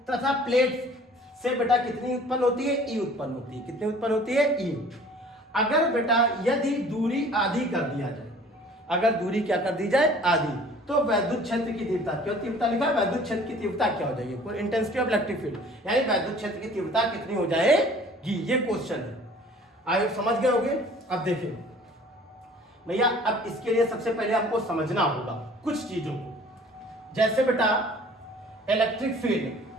तथा प्लेट से बेटा कितनी उत्पन्न होती है, ई उत्पन्न होती है। कितनी उत्पन्न होती है, ई। अगर बेटा यदि दूरी आधी कर दिया जाए, अगर दूरी क्या कर दी जाए, आधी, तो वैद्युत क्षेत्र की तीव्रता, क्यों तीव्रता लिखा है, वैद्युत क्षेत्र की तीव्रता क्या हो जाएगी, इंटेंसिटी ऑफ इलेक्ट्रिक फील्ड, यानी वैद्युत क्षेत्र की तीव्रता कितनी हो जाएगी, ये क्वेश्चन है। आप समझ गए होंगे। अब देखिए भैया, अब इसके लिए सबसे पहले आपको समझना होगा कुछ चीजों को। जैसे बेटा इलेक्ट्रिक फील्ड,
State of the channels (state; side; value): normal; both; correlation 0.50